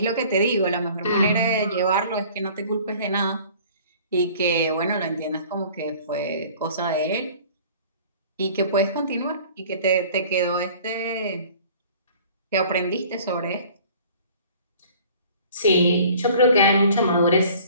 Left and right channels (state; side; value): inverted; both; correlation -0.49